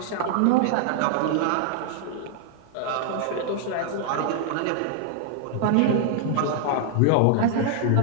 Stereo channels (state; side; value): different; both; correlation -0.01